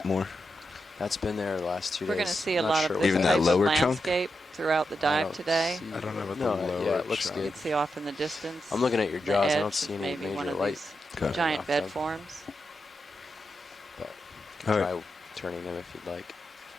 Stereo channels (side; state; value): both; normal; correlation 0.87